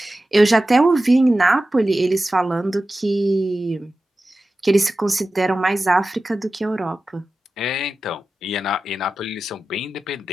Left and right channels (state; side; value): normal; both; correlation 0.94